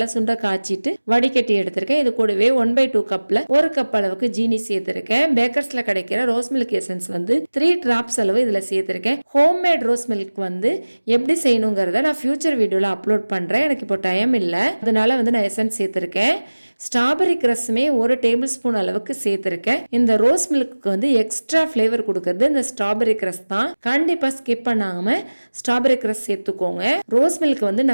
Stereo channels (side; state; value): both; inverted; correlation -1.00